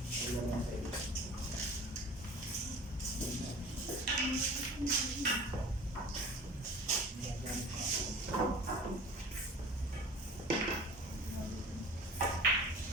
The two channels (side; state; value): both; normal; correlation 0.42